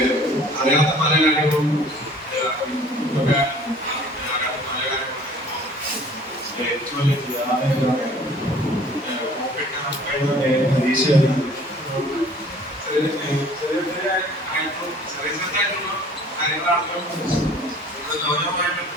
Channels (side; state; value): both; normal; correlation 0.51